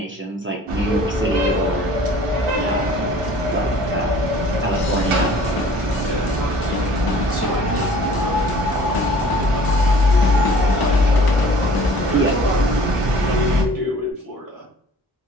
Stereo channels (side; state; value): both; normal; correlation 0.50